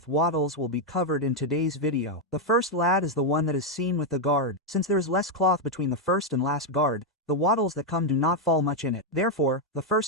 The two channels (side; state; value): both; normal; correlation 0.01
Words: wattles will be covered in today's video. The first lad is the one that is seen with the guard. Since there is less cloth between the first and last guard, the wattles that come do not fall much in it. Therefore, the